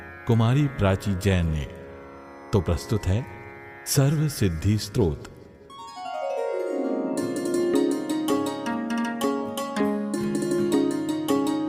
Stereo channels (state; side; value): identical; both; correlation 1.00